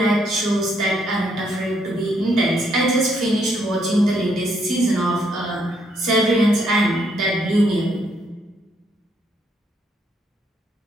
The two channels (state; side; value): normal; both; correlation 0.73